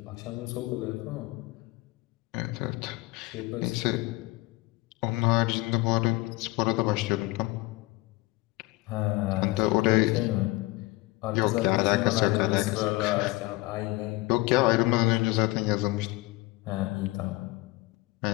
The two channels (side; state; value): right; quieter; 20.9 dB